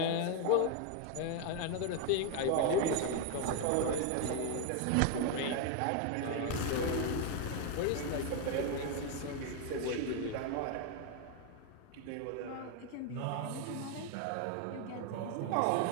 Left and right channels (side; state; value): both; different; correlation 0.01